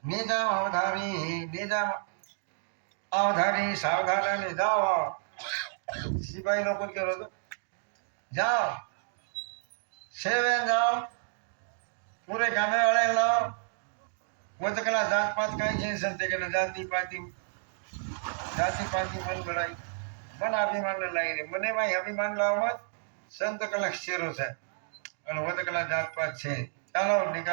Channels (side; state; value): left; silent; digital silence